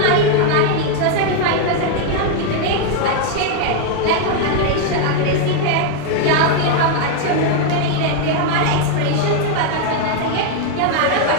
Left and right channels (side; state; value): both; different; correlation 0.00